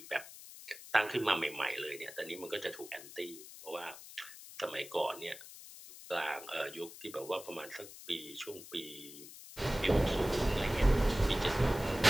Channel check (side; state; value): left; noise; hiss, 15 dB below the sound